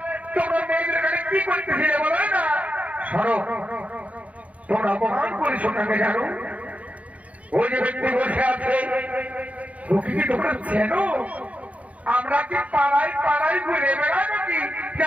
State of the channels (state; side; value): late; left; 0.068 ms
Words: তোমরা মেয়েদের ঘাটে কি করতেছিলে বলো না? সরো, তোমরা অপমান করেছো কাকে জানো? ওই যে ব্যক্তি বসে আছে ওকে কি তোমরা চেনো? আমরা কি পাড়ায় পাড়ায় ঘুরে বেড়াই নাকি যে